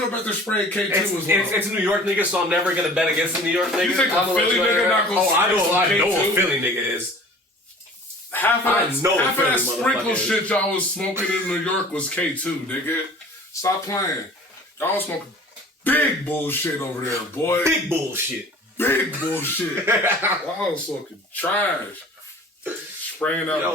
they're spraying K2 as well? It's New York niggas, so I'm never gonna bet against the New York niggas. You think a Philly nigga not gonna I know K2? a Philly nigga is. Half of that sprinkle motherfucker shit y'all was smoking in New York was K2, nigga. Stop playing. Y'all was smoking big bullshit over there, boy. Big bullshit. Big bullshit. Y'all was smoking trash. Spraying out.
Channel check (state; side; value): normal; both; correlation 0.46